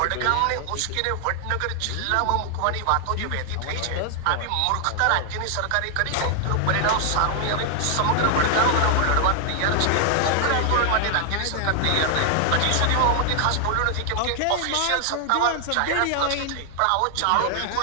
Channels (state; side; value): different; both; correlation 0.00